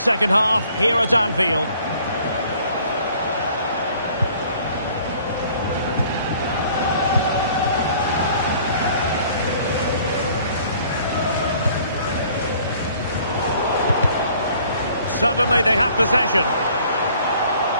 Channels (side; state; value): both; inverted; correlation -0.56